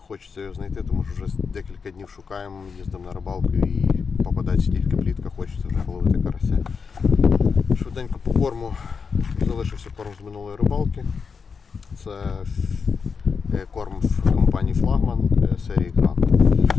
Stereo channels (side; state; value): right; quieter; 5.5 dB